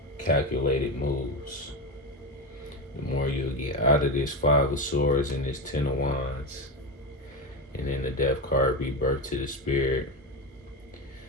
calculated moves. The more you'll get out of this Five of Swords and this Ten of Wands, and then the Death card, rebirth to the Spirit.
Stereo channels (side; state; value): both; normal; correlation 0.17